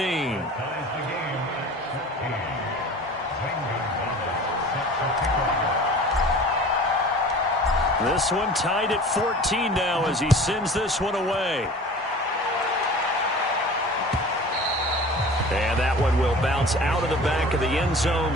This one tied at 14 now as he sends this one away. And that one will bounce out of the back of the end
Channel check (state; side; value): normal; both; correlation 0.41